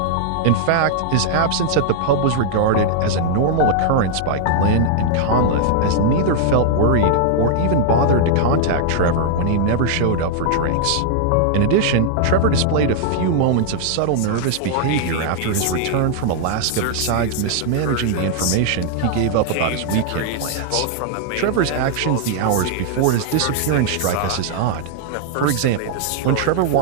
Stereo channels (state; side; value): different; both; correlation -0.01